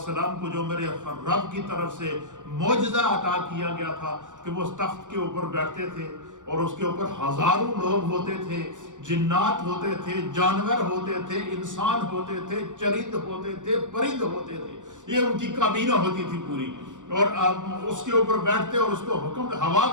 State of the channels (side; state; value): left; late; 0.86 ms